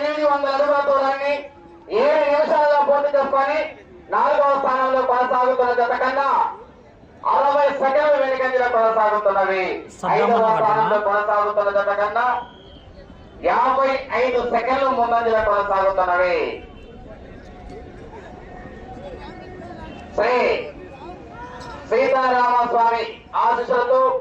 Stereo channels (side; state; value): both; identical; correlation 1.00